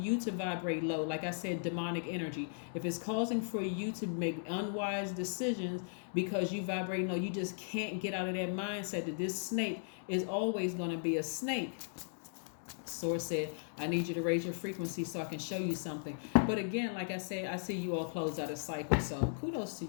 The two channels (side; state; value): right; silent; digital silence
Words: you to vibrate low, like I said, demonic energy, if it's causing for you to make unwise decisions because you vibrate low, you just can't get out of that mindset that this snake is always going to be a snake. Source said, I need you to raise your frequency so I can show you something. But again, like I said, I see you all close out a cycle. So kudos to